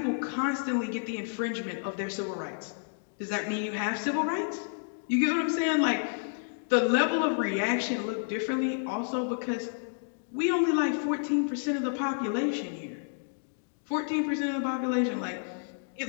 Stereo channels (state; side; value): silent; right; digital silence